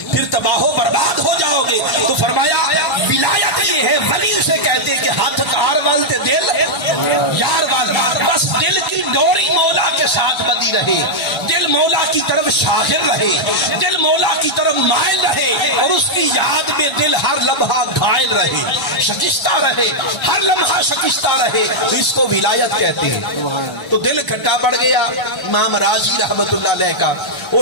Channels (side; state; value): right; late; 1.3 ms